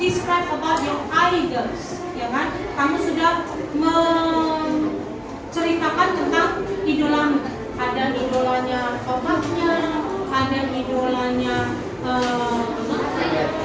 about your idols, ya kan? Kamu sudah menceritakan tentang idolamu. Ada idolanya bapaknya, ada idolanya atlet.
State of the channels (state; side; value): identical; both; correlation 1.00